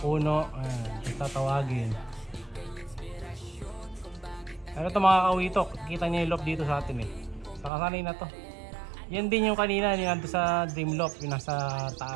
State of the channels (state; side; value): drops out; left; at 7.7 s